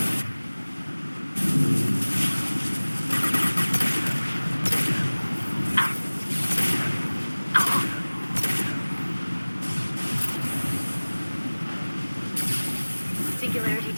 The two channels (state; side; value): inverted; both; correlation -1.00